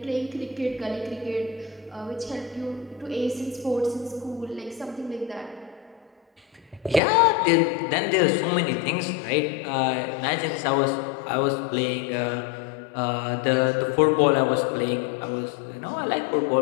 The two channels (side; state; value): right; drops out; at 7.0 s